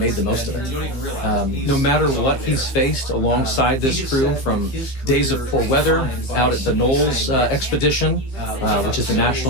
the most of it. No matter what he's faced alongside this crew, from days of poor weather out at the Knowles expedition which is the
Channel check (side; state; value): right; late; 15 ms